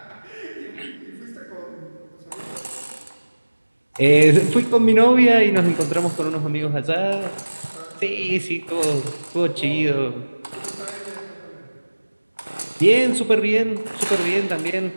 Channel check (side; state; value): both; inverted; correlation -1.00